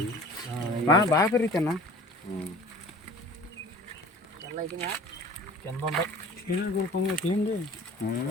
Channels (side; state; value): both; normal; correlation 0.44